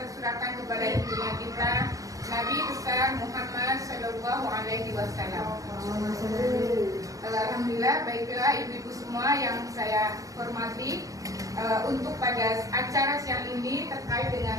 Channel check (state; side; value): late; left; 0.16 ms